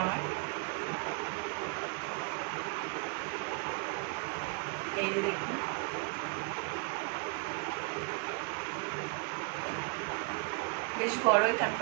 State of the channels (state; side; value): quieter; left; 32.9 dB